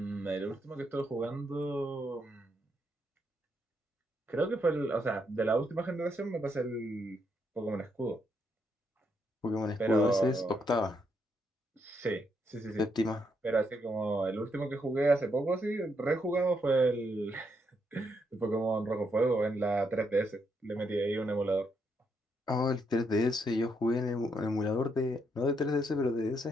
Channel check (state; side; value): normal; both; correlation 0.77